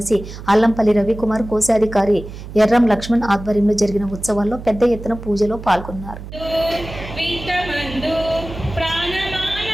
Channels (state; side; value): noise; right; hum, 12 dB below the sound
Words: అల్లంపల్లి రవికుమార్, కోశాధికారి ఎర్రం లక్ష్మణ్ ఆధ్వర్యంలో జరిగిన ఉత్సవాల్లో పెద్ద ఎత్తున పూజలో పాల్గొన్నారు. మందు